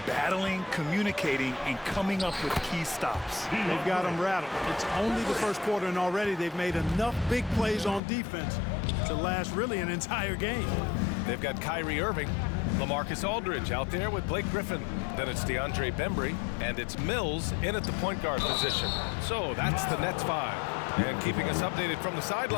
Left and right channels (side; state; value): right; drops out; at 8.0 s